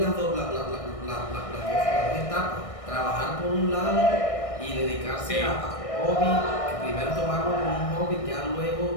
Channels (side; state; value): right; late; 1.6 ms